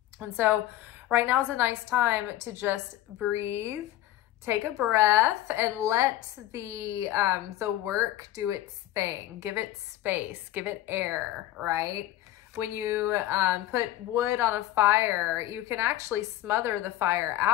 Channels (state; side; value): quieter; right; 14.3 dB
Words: And so right now is a nice time to just breathe, take a breath, and let the work do its thing. Give it space, give it air, right? When you put wood on a fire, you can actually smother the fire